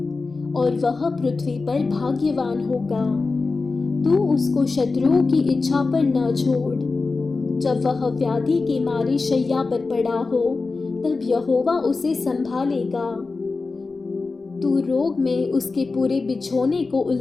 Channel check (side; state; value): right; quieter; 4.0 dB